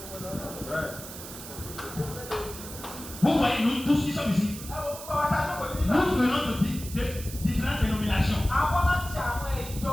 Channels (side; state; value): right; noise; hiss, 12 dB below the sound